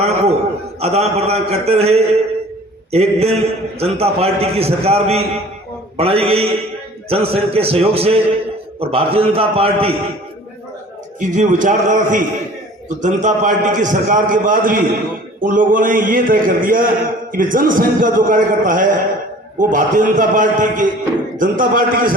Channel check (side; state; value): both; normal; correlation 0.47